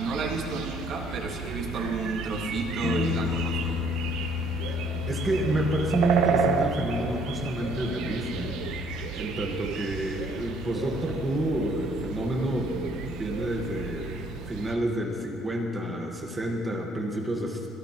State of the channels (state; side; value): normal; both; correlation 0.63